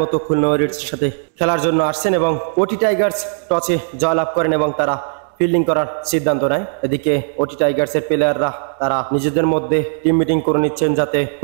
মতো খুলনা ওয়ারিয়ার্সের সাথে খেলার জন্য আসছেন এবং ওটি টাইগার্স টসে জয়লাভ করেন এবং তারা ফিল্ডিং করার সিদ্ধান্ত নেয়। এদিকে ওটি টাইগার্সের প্লেয়াররা তারা নিজেদের মধ্যে টিম মিটিং করে নিচ্ছেন যাতে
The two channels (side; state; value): left; silent; digital silence